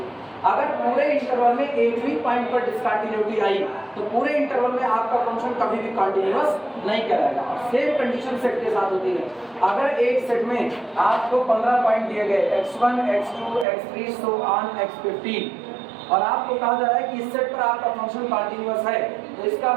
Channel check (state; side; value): drops out; left; at 13.7 s